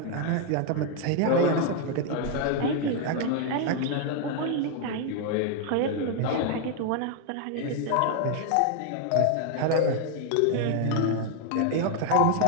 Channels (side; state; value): both; different; correlation 0.00